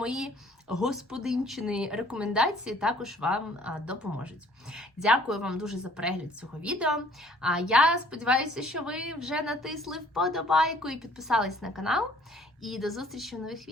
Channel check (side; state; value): both; normal; correlation 0.57